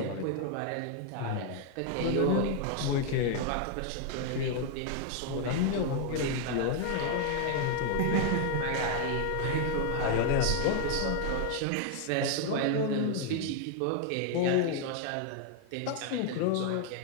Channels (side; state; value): both; different; correlation 0.00